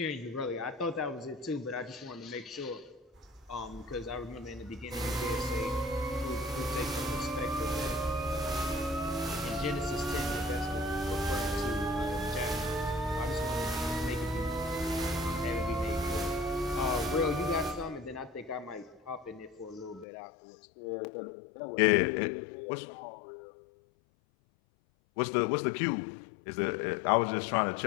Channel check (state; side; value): drops out; right; at 20.1 s